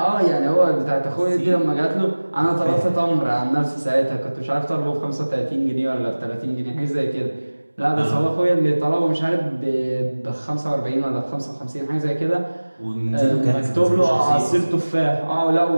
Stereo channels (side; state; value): both; inverted; correlation -1.00